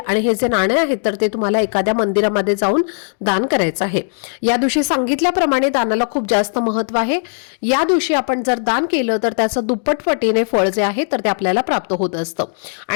आणि हे जे नाणे आहेत तर ते तुम्हाला एखाद्या मंदिरामध्ये जाऊन दान करायचं आहे. या दिवशी सांगितल्याप्रमाणे दानाला खूप जास्त महत्व आहे. या दिवशी आपण जर दान केलं तर त्याचं दुप्पट पटीने फळ जे आहे तर ते आपल्याला प्राप्त होत असतं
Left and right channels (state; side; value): silent; right; digital silence